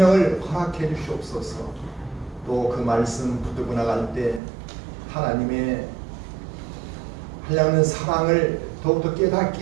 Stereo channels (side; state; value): left; drops out; at 4.4 s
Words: 허락해 주시옵소서. 또 그 말씀 붙들고 나갈 때 하나님의 하려는 사랑을 더욱더